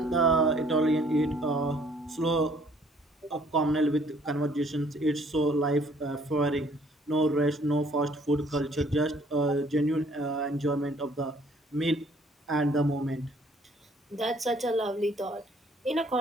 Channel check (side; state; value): both; normal; correlation 0.60